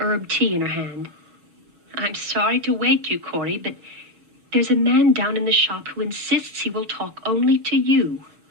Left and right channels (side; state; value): left; late; 7.3 ms